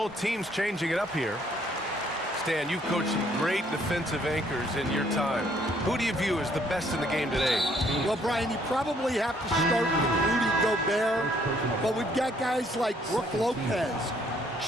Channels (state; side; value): normal; both; correlation 0.65